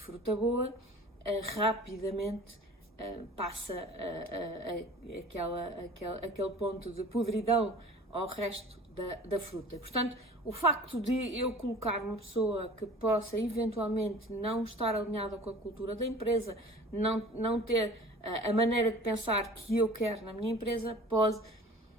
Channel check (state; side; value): normal; both; correlation 0.44